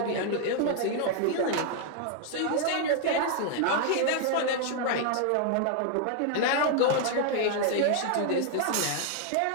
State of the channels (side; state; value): both; different; correlation 0.00